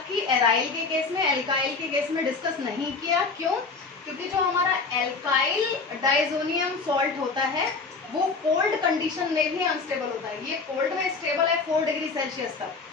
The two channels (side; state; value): right; quieter; 4.4 dB